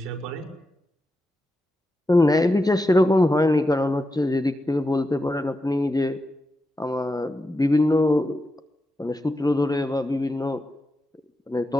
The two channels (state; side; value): normal; both; correlation 0.88